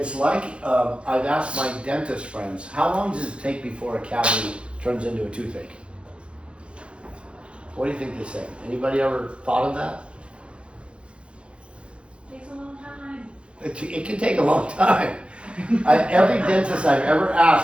like, I've asked my dentist friends, how long does it take before a cavity turns into a toothache? What do you think they say? Anybody ever thought of that? Takes a long time. It can take a long time. Every dentist I've ever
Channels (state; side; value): late; left; 0.058 ms